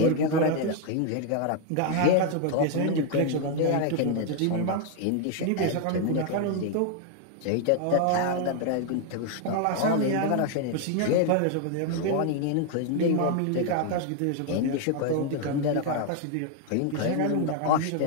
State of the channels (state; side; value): different; both; correlation 0.00